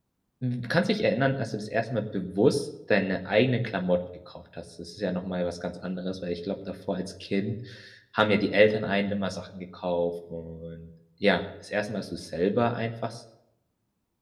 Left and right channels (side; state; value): both; identical; correlation 1.00